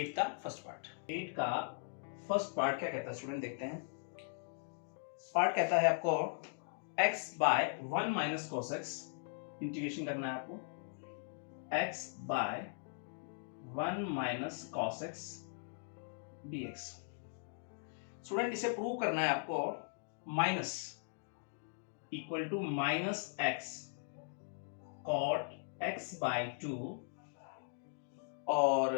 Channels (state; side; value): silent; right; digital silence